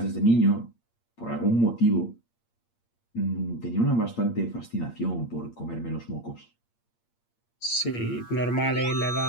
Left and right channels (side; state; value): right; late; 8.6 ms